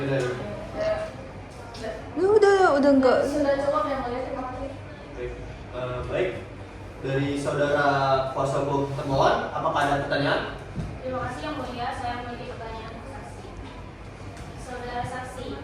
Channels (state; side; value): identical; both; correlation 1.00